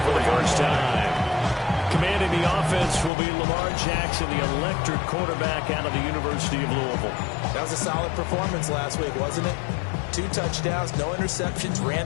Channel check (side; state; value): right; drops out; at 3.1 s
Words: for the first time. Commanding the offense will be Lamar Jackson, the electric quarterback out of the University of Louisville. That was a solid performance last week, wasn't it? 2 touchdowns, no interceptions,